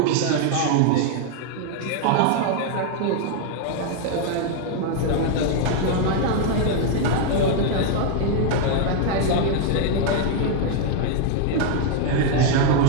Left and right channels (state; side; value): different; both; correlation 0.00